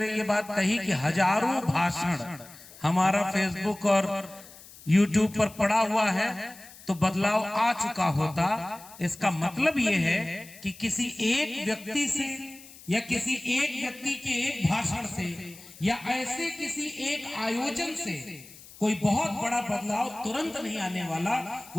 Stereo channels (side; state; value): left; noise; hiss, 20 dB below the sound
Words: ये बात कही कि हजारों भाषण हमारा फेसबुक और यूट्यूब पर पड़ा हुआ है तो बदलाव आ चुका होता। इसका मतलब यह है कि किसी एक व्यक्ति से या किसी एक व्यक्ति के एक भाषण से या ऐसे किसी एक आयोजन से कोई बहुत बड़ा बदलाव तुरंत नहीं आने वाला।